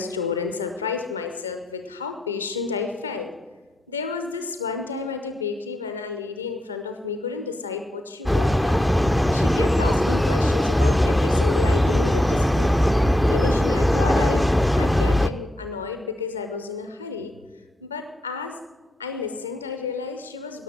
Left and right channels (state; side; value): normal; both; correlation 0.83